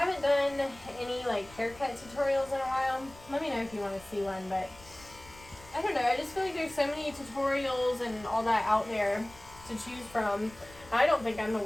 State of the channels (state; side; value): noise; left; rumble, 22 dB below the sound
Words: done any, like, haircut tutorials in a while. Let me know if you want to see one, but I don't know, I just feel like there's so many tutorials and all that out there to choose from. I don't think I'm the